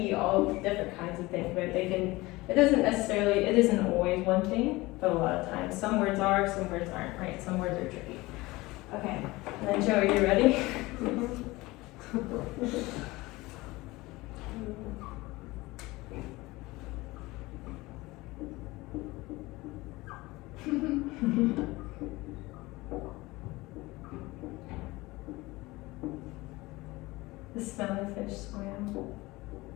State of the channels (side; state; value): right; quieter; 20.9 dB